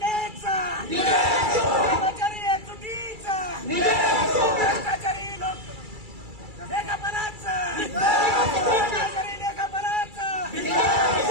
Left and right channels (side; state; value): left; late; 2.3 ms